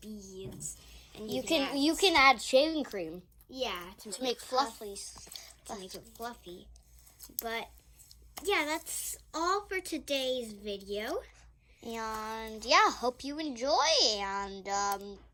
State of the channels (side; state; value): both; identical; correlation 1.00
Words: beads, and you can add shaving cream. Yeah, to make fluffies. To make it fluffy. But yeah, that's all for today's video. And yeah, hope you enjoy and